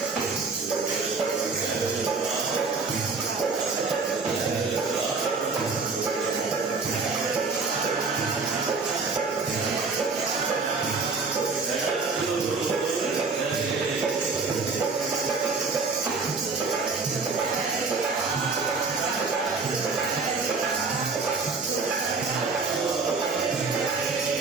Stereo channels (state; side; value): quieter; left; 4.3 dB